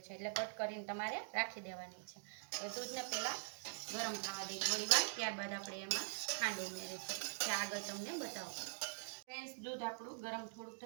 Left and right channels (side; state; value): left; silent; digital silence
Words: છે, એટલે કટ કરીને તમારે રાખી દેવાની છે. તો દૂધને પહેલાં ગરમ થવા દઈએ થોડી વાર. ત્યારબાદ આપણે એમાં ખાંડ ઉમેરીશું, જે આગળ તમને બતાવશું. ફ્રેન્ડ્સ, દૂધ આપણું ગરમ થોડું